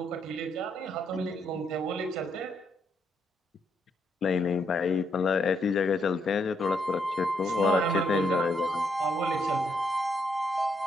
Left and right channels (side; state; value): both; normal; correlation 0.75